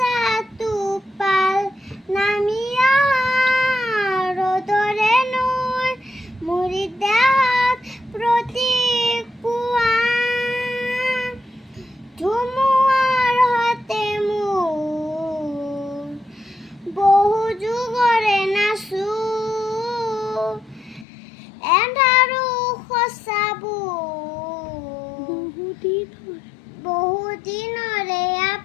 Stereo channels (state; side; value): drops out; right; at 21.1 s